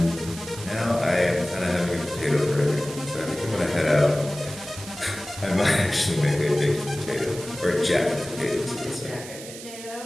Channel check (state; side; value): noise; right; hiss, 13 dB below the sound